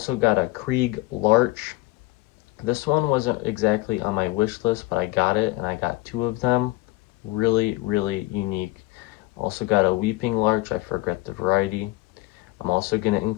got a Krieg Larch. This one wasn't exactly on my wish list, but I got it, and I got 2 of them. Really, really unique. Also got a Weeping Larch. I forgot the variety. I'm also going to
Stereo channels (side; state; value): right; quieter; 19.6 dB